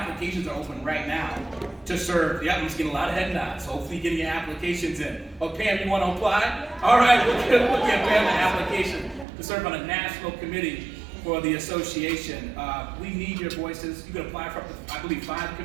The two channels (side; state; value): left; drops out; at 9.2 s